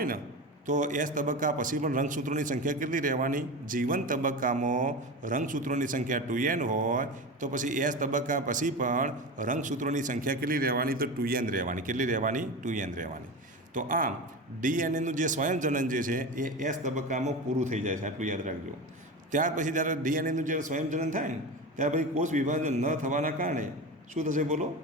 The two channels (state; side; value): normal; both; correlation 0.26